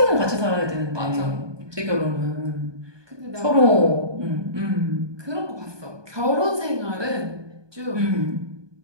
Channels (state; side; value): late; left; 1.2 ms